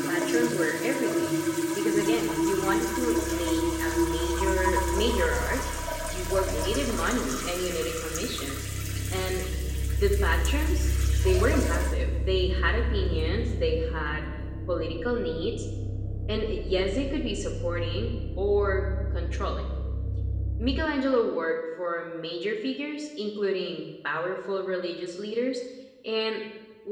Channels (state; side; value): identical; both; correlation 1.00